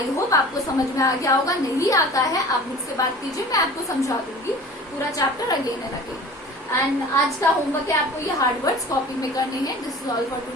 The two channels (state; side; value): normal; both; correlation 0.42